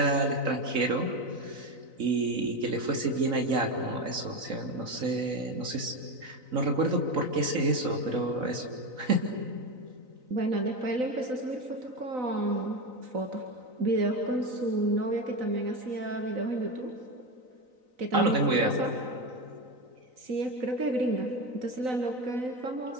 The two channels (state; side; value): late; left; 3.9 ms